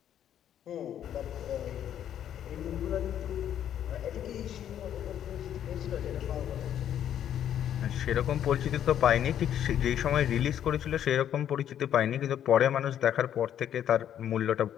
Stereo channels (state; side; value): quieter; right; 10.2 dB